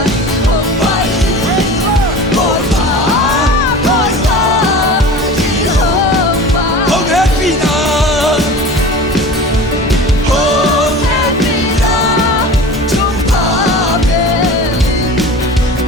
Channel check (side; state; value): both; normal; correlation 0.36